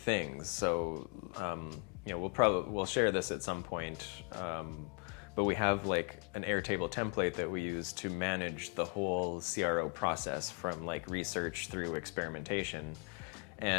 So we'll share this at some point, but we have an Airtable template that we use to manage the whole CRO process from research through experimentation.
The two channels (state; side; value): quieter; right; 37.4 dB